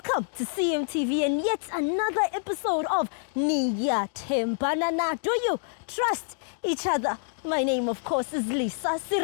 to CMTV and yet another episode of Niyathembana. Do you trust each other? My name, of course, is Lisa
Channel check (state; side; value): silent; right; digital silence